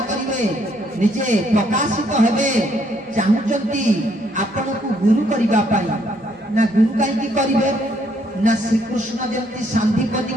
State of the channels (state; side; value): normal; both; correlation 0.69